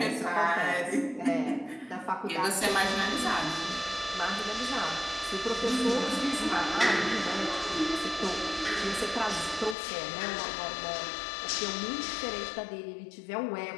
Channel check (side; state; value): right; drops out; at 9.8 s